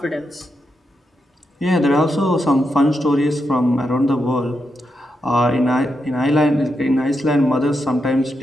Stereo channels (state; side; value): normal; both; correlation 0.85